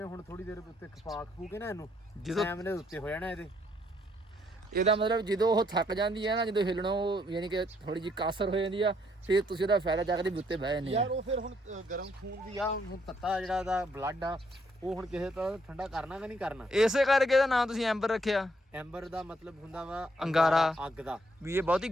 ਹੁਣ ਥੋੜੀ ਦੇਰ ਉੱਤੇ ਖਪਾ ਖੂ ਕੇ ਨਾ ਇਹਨੂੰ, ਜਦੋਂ ਸੈਮ ਨੇ ਉੱਤੇ ਹੋ ਜਾਣਾ ਇਹਦੇ। ਇਹਦਾ ਮਤਲਬ ਜਦੋਂ ਉਹ ਥੱਕ ਜਾਂਦੀ ਹੈ ਨਾ, ਜਦੋਂ ਹਿੱਲਣਾ ਉਹ ਯਾਨੀ ਕਿ ਥੋੜੀ ਜਿਹੀ ਕਾਸਰ ਹੋ ਜਾਂਦੀ ਆ, ਫਿਰ ਤੁਸੀਂ ਉਹਦਾ ਫਾਇਦਾ ਚੱਕਦੇ ਵੀ ਉੱਤੇ ਬਹਿ ਜਾਂਦੇ ਆ। ਯਾਰ ਉਹ ਫਿਰ ਹੁਣ ਗਰਮ ਖੂਨ ਦੀ ਆ, ਹੁਣ ਤੱਤਾ ਜਿਹੜਾ ਦਾ ਬਲੱਡ ਆ ਉਹ ਹੁਣ ਕਿਸੇ ਤਰ੍ਹਾਂ ਠੰਡਾ ਕਰਨਾ ਕਿ ਨਹੀਂ ਕਰਨਾ। ਇਸੇ ਕਰਕੇ ਇਹਦਾ ਨਾਮ ਤੁਸੀਂ ਐਂਬਰ ਰੱਖਿਆ। ਐਂਬਰ ਦਾ ਮਤਲਬ ਹੁੰਦਾ ਵਾ ਅੰਗਾਰਾ, ਅੱਗ ਦਾ, ਵੀ ਇਹ ਬਹੁਤੀ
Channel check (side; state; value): both; normal; correlation 0.71